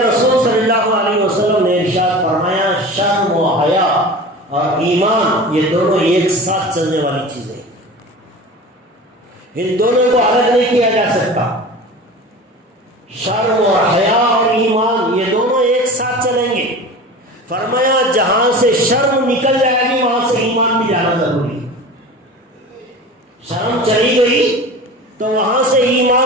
صلی اللہ علیہ وسلم نے ارشاد فرمایا شرم و حیا اور ایمان یہ دونوں ایک ساتھ چلنے والی چیزیں ہیں. ان دونوں کو الگ نہیں کیا جا سکتا. شرم اور حیا اور ایمان یہ دونوں ایک ساتھ چلیں گے. فرمایا جہاں سے شرم نکل جائے گی وہاں سے ایمان بھی جانا ضروری ہے. شرم چلی گئی تو وہاں سے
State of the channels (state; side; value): normal; both; correlation 0.35